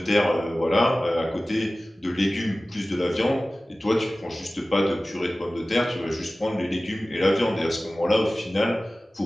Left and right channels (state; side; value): normal; both; correlation 0.97